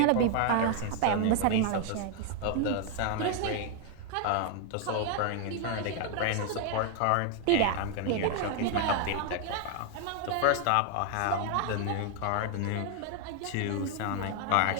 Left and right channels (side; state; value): both; different; correlation 0.00